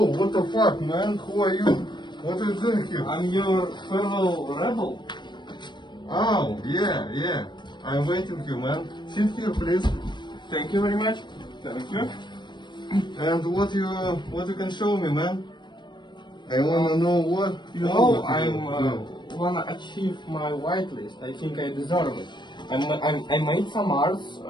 what the fuck, man? Who are you? What are you doing here? I'm your fellow rebel. Oh, yeah. I'm waiting you, man. Sit here, please. Thank you very much. Thank you. And what you can show me, man? I wanna know what You know, what you I'm do. wanna achieve my whitelist. I think I deserve it. I made some arts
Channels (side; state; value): right; late; 0.22 ms